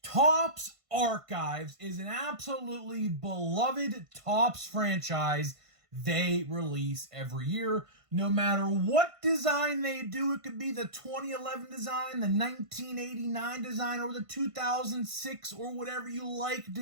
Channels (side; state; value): left; late; 1.5 ms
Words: Topps Archives is an absolutely beloved Topps franchise they release every year. No matter what design they do, it could be the 2011 design, the 1989 design, or the 2006 or whatever you like